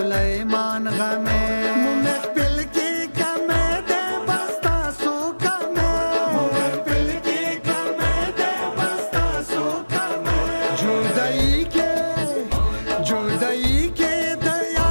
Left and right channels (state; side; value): inverted; both; correlation -1.00